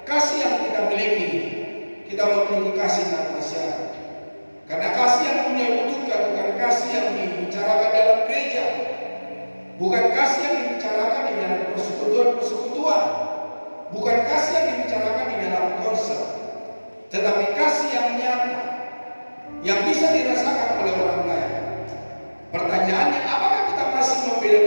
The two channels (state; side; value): inverted; both; correlation -1.00